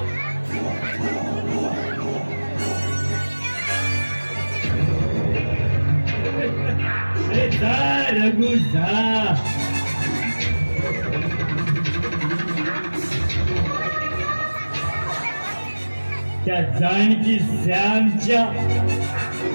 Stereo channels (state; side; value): inverted; both; correlation -1.00